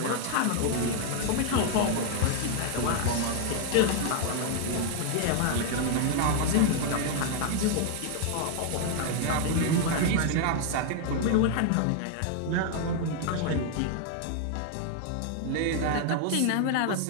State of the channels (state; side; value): different; both; correlation 0.00